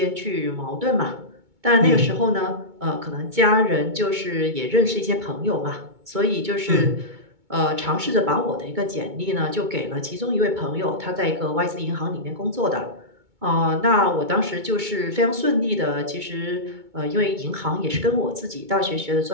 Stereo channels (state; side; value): late; left; 2.2 ms